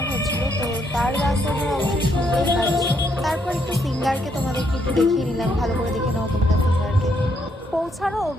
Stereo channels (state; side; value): normal; both; correlation 0.74